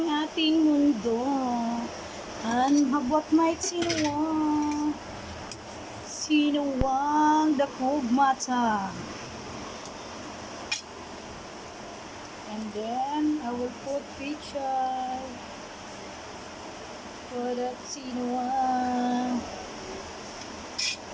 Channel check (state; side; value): identical; both; correlation 1.00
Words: ang ating mundo. And habot might sinuwang. Sinuwang dakog mata. And then I will put picture for that sinuwang.